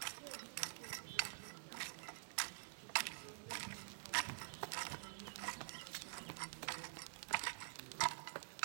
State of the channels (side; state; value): left; silent; digital silence